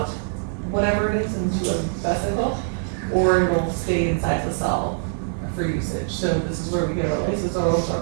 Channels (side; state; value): left; silent; 56 dB below the other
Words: whatever it is into a vesicle, or it'll stay inside the cell for usage. So this is where we get our lysosomes, our